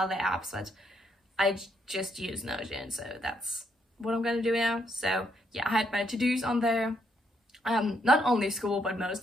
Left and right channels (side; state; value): both; normal; correlation 0.75